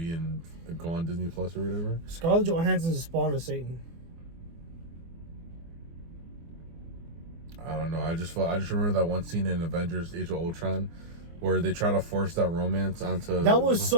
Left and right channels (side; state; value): left; late; 24 ms